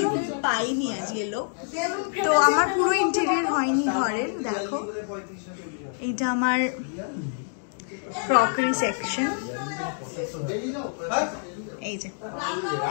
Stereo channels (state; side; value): silent; right; digital silence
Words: কিন্তু পাইনি আজকে লোক তো আমার পুরো ইন্টেরিয়র হয়নি ঘরের দেখো এইটা আমার ক্রকারি সেকশন এই যে